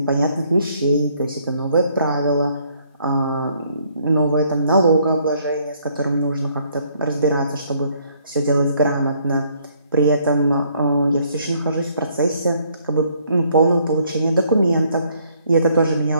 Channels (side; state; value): both; inverted; correlation -0.66